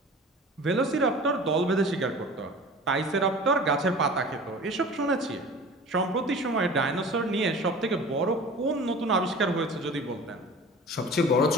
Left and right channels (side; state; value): both; normal; correlation 0.40